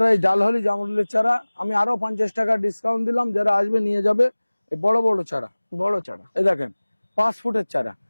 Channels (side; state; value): both; inverted; correlation -1.00